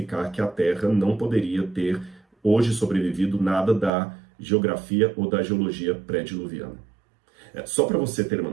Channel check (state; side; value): drops out; left; at 3.9 s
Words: que a Terra não poderia ter hoje sobrevivido nada da geografia ou da geologia pré-diluviana. Só para você ter uma